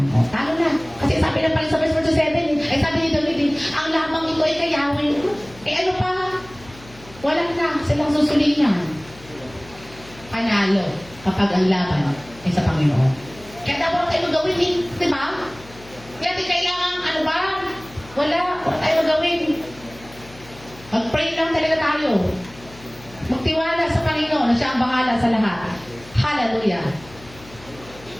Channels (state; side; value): noise; left; hum, 21 dB below the sound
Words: O, talo na. Kasi sabi na pala sa verse 47, ay sabi ni David, ang lamang ito ay kay Yahweh. Eh ano pa? Wala na silang susulingan. Panalo kapag ang laban ay sa Panginoon. Kaya dapat tayo magawin eh, di ba? Kaya di kailangan, ano ba? Wala tayo magawin. Mag-pray lang talaga tayo. Magtiwala sa Panginoon na siya ang bahala sa lahat. Hallelujah.